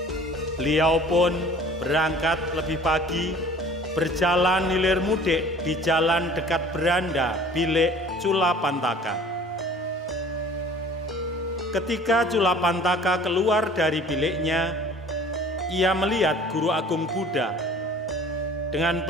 Beliau pun berangkat lebih pagi, berjalan hilir mudik di jalan dekat beranda bilik Culapantaka. Ketika Culapantaka keluar dari biliknya, ia melihat Guru Agung Buddha. Dengan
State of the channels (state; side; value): normal; both; correlation 0.48